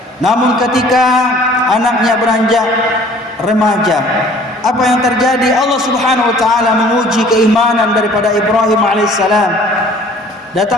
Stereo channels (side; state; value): both; normal; correlation 0.52